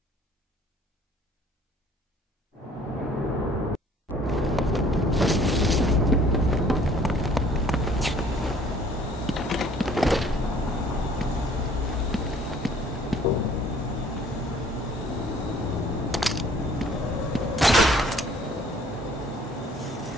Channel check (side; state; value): both; normal; correlation 0.56